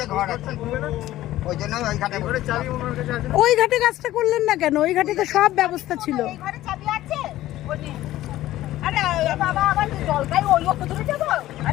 ঘর আছে, ওই জন্য ওই ঘাটে করে চাবি ওই ঘাটে কাজটা করলেন না কেন? ওই ঘাটে তো সব ব্যবস্থা ছিল। এই ঘরে চাবি আছে? ওই নে। আরে বাবা, আবার জলটাই ওই ওপর ধরে যাবো?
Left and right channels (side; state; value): right; quieter; 14.9 dB